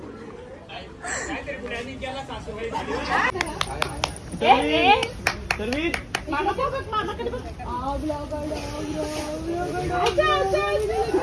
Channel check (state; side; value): identical; both; correlation 1.00